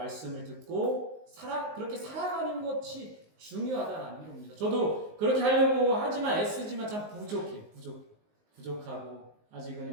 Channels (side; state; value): left; late; 19 ms